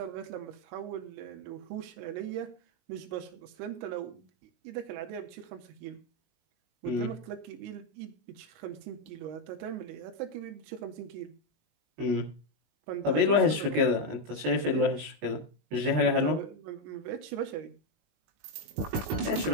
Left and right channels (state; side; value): late; left; 19 ms